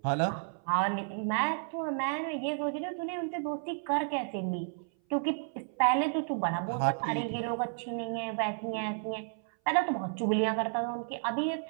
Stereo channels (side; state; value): left; silent; 56 dB below the other